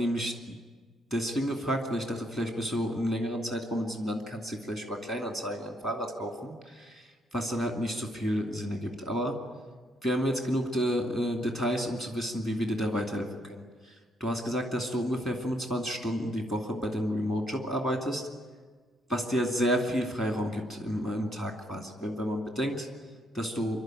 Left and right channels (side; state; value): both; normal; correlation 0.73